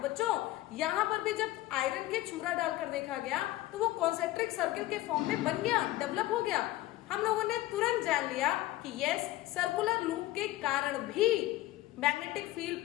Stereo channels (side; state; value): right; quieter; 16.4 dB